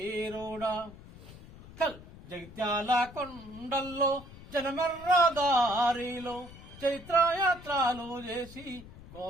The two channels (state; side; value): noise; left; rumble, 18 dB below the sound